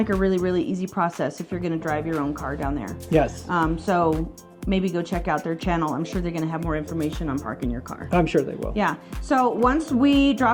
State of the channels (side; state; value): both; identical; correlation 1.00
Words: a really, really easy process if you're going to drive your own car down there. Yes. So maybe go check out their channel. I'm sure they're going to have more information on parking your car. I'm sure they will. Yeah. So once we